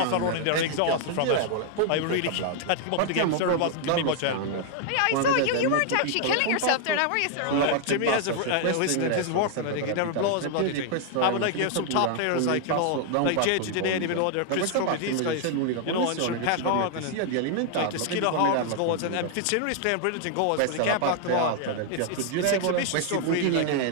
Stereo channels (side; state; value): both; different; correlation 0.00